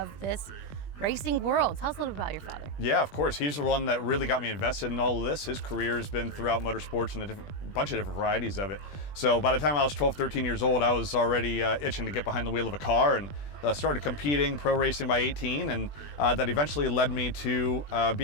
this racing world. Tell us a little bit about your father. Yeah, of course. He's the one that really got me invested in all of this. His career has been throughout motorsports and a bunch of different varieties of it. So by the time I was 12, 13 years old, I was already itching to get behind the wheel of a car, and started competing pro racing by 18, and that eventually led me to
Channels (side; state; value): right; late; 20 ms